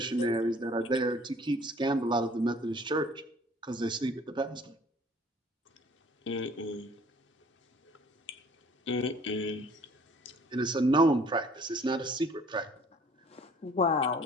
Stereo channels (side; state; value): both; normal; correlation 0.54